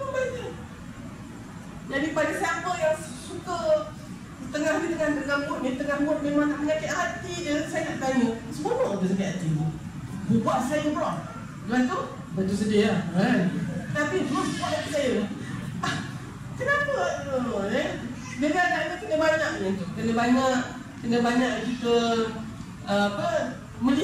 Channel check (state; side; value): identical; both; correlation 1.00